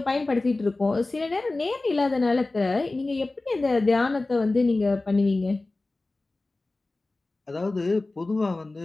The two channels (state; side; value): quieter; right; 3.1 dB